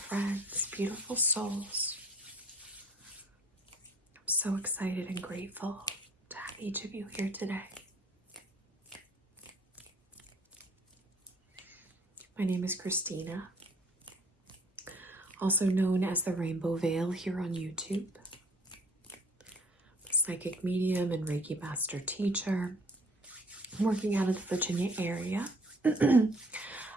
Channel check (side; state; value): both; normal; correlation 0.56